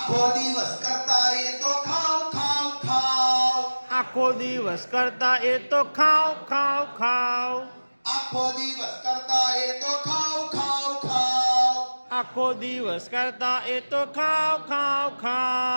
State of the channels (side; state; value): both; inverted; correlation -1.00